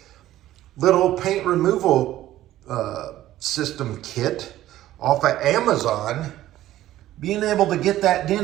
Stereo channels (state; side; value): quieter; left; 14.2 dB